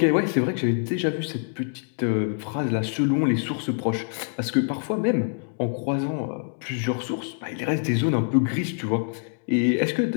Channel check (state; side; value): silent; right; 60 dB below the other